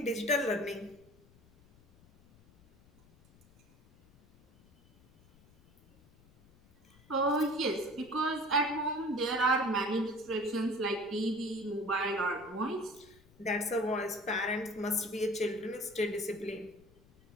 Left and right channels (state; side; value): noise; left; rumble, 28 dB below the sound